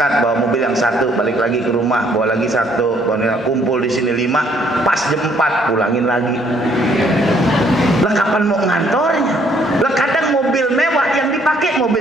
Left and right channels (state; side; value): normal; both; correlation 0.65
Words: bawa mobil yang 1, balik lagi ke rumah, bawa lagi 1, kumpul di sini 5, pas jam 4 pulangin lagi. Lah kapan mau ngantornya? Lah kadang mobil mewah yang dipakai